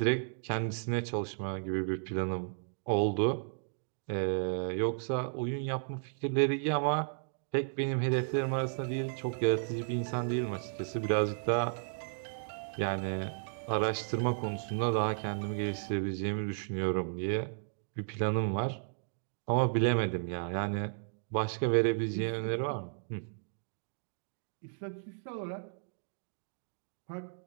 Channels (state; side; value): silent; left; digital silence